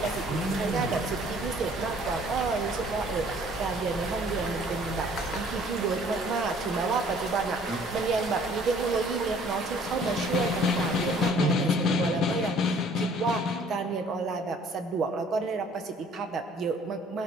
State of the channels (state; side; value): normal; both; correlation 0.56